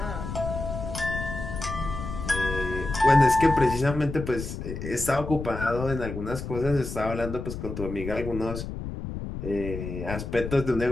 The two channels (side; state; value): left; noise; rumble, 7 dB below the sound